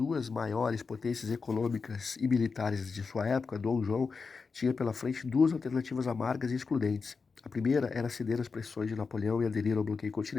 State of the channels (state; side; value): quieter; right; 4.8 dB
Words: maiores potências econômicas e militares de sua época, Dom João tinha pela frente duas alternativas amargas e excludentes. A primeira era ceder às pressões de Napoleão e aderir ao bloqueio